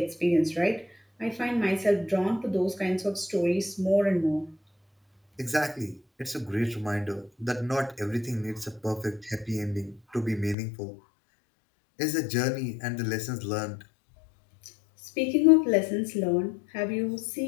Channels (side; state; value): right; drops out; at 10.6 s